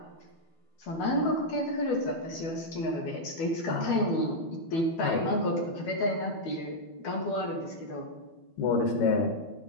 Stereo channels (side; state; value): right; late; 12 ms